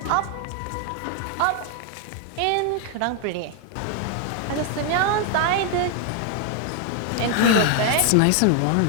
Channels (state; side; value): different; both; correlation 0.00